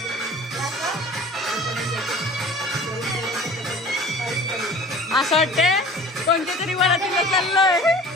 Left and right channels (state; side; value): normal; both; correlation 0.44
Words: असं वाटते कोणत्या तरी वरातीला चाललोय.